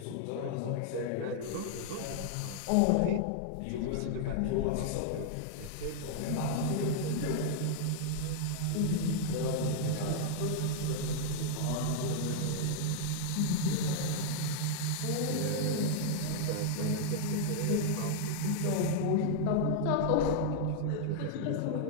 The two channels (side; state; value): both; different; correlation -0.01